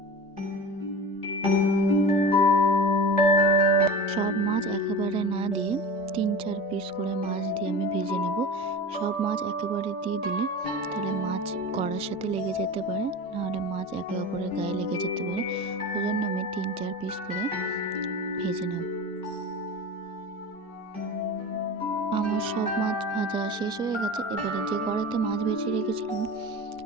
সব মাছ একেবারে না দিয়ে 3-4 পিস করে মাছ দিয়ে আমি ভেজে নেব। সব মাছ একেবারে দিয়ে দিলে তাহলে মাছ কড়ার সাথে লেগে যেতে পারে, নাহলে মাছ একে অপরের গায়ে লেগে যেতে পারে। ওই জন্য আমি 3-4 পিস করে ভেজে নেব। আমার সব মাছ ভাজা শেষ হয়ে গেছে। এবারে যে কড়াইতে মাছ ভেজে রেখেছিলাম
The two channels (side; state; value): both; normal; correlation 0.31